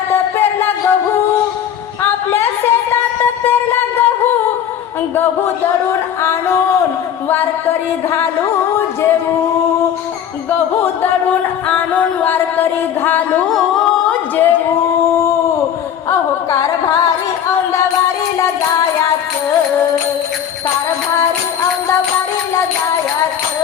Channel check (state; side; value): quieter; right; 9.2 dB